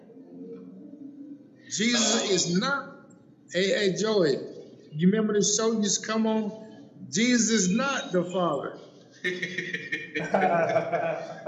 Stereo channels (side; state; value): both; identical; correlation 1.00